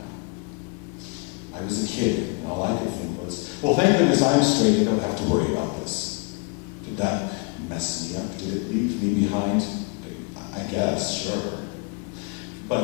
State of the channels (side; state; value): right; quieter; 30.0 dB